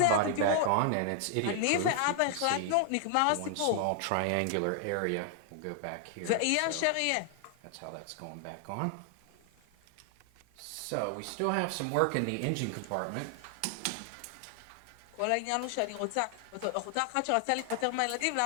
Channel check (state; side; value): different; both; correlation 0.00